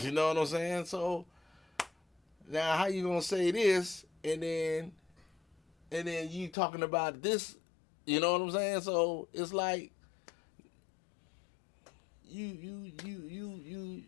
know what I'm saying? So now, how you gonna say this and then you talking about this? You know what I'm saying? So it's like you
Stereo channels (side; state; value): right; drops out; at 6.6 s